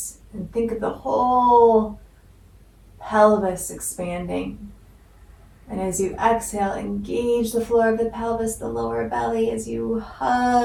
and think of the whole pelvis expanding. And as you exhale, engage the floor of the pelvis, the lower belly, as you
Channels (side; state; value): both; identical; correlation 1.00